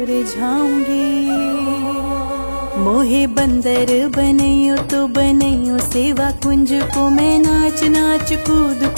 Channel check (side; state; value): both; inverted; correlation -1.00